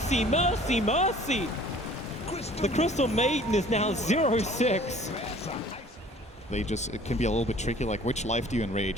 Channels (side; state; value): both; normal; correlation 0.51